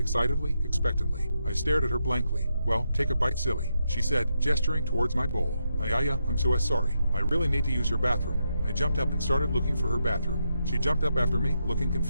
expectantly. I stared at her blankly. "Well, take a bite, silly," she said, gesturing towards my bowl. I'm so sorry. I really need to use your bathroom." I jumped up and started looking for her bathroom. She jumped up after me, looking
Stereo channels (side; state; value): both; inverted; correlation -0.83